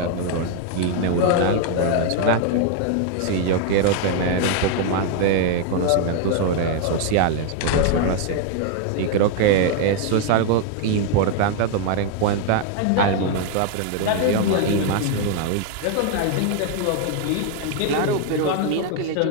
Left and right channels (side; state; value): both; different; correlation 0.00